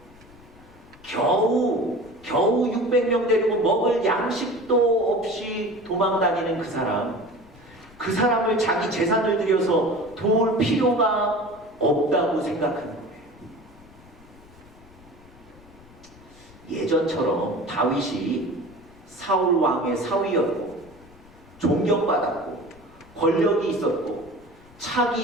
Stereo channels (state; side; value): noise; left; rumble, 25 dB below the sound